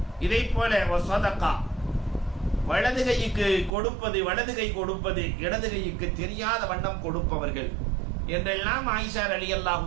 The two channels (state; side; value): drops out; left; at 3.7 s